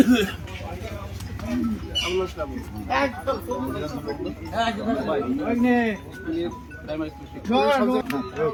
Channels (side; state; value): both; identical; correlation 1.00